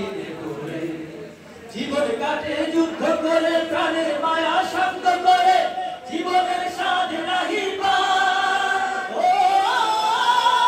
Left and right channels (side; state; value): both; identical; correlation 1.00